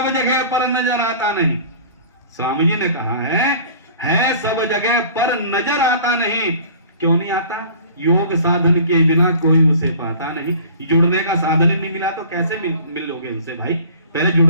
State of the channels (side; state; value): both; inverted; correlation -0.46